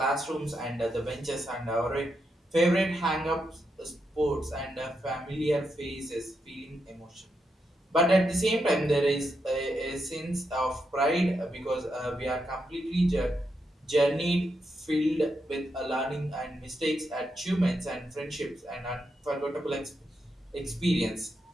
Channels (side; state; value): both; normal; correlation 0.83